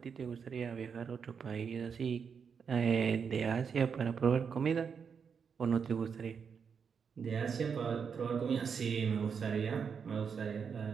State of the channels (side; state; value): left; quieter; 6.4 dB